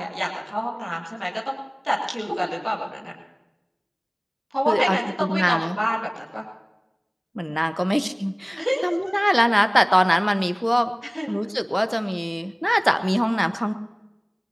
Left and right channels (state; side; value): identical; both; correlation 1.00